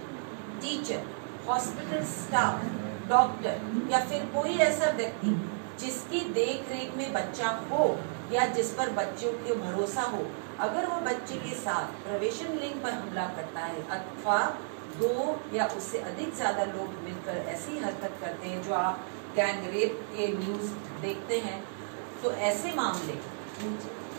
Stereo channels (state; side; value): silent; left; digital silence